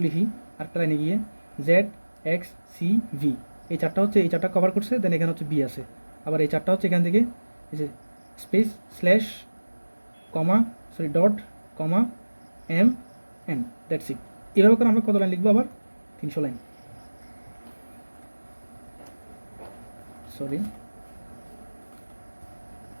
লিখি আরেকটা লাইনে গিয়ে, জেড এক্স সি ভি, এই চারটা হচ্ছে এই চারটা কভার করছে, দেন এখানে হচ্ছে বি আছে, আবার এই চারটা হচ্ছে এখান থেকে এই যে space slash comma sorry dot comma M N, that's it. এভাবে করে আমরা কত লাইন লিখবো, আবার 300 লাইন, সরি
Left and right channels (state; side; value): inverted; both; correlation -1.00